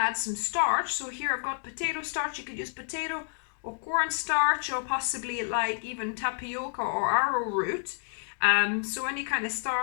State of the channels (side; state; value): right; silent; digital silence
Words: some starch. So here I've got potato starch. You could use potato or corn starch or possibly like even tapioca or arrowroot. So any kind of